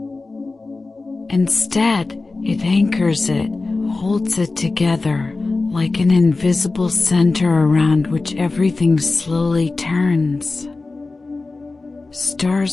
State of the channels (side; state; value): right; quieter; 3.6 dB